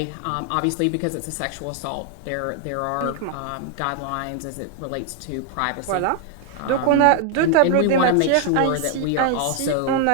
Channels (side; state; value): both; different; correlation 0.00